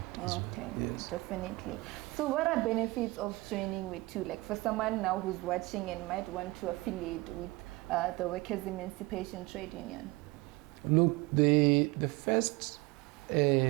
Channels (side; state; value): left; quieter; 22.4 dB